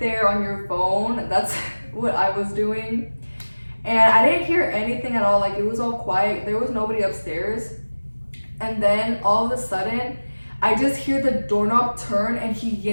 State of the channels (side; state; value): both; inverted; correlation -1.00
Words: there on your phone, that's what I was doing. And I didn't hear anything at all, like it was all quiet, there was nobody upstairs. And then all of a sudden, I just hear the doorknob turn and he